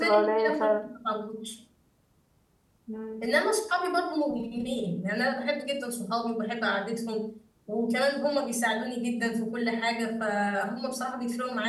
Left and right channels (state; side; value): identical; both; correlation 1.00